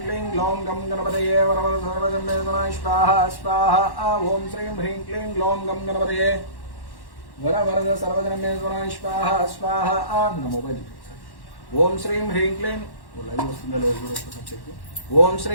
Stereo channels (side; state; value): right; late; 1.1 ms